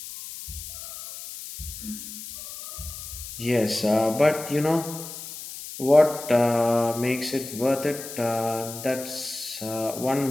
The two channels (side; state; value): left; noise; hiss, 11 dB below the sound